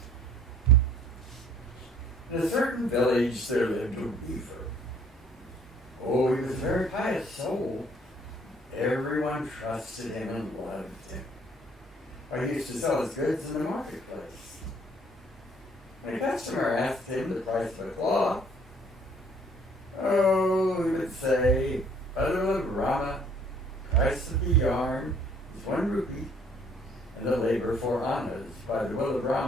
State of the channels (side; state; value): both; normal; correlation 0.59